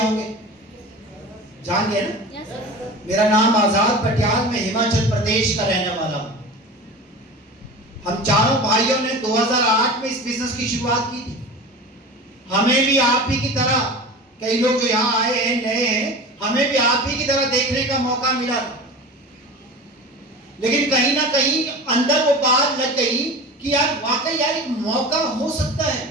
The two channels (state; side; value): normal; both; correlation 0.33